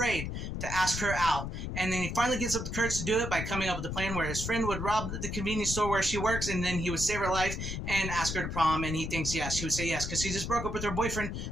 to ask her out. And then he finally gets up the courage to do it by coming up with a plan where his friend would rob the convenience store where she works, and then he would save her life and ask her to prom, and he thinks yes. She would say yes, because she just broke up with her boyfriend,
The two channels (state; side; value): noise; left; rumble, 4 dB below the sound